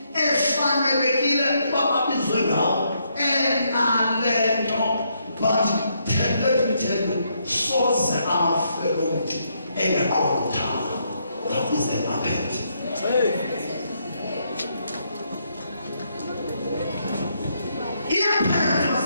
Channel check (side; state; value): both; inverted; correlation -0.76